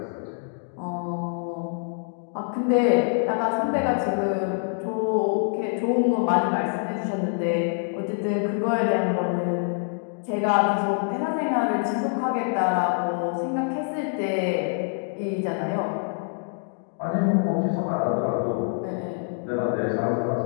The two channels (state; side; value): silent; right; 57 dB below the other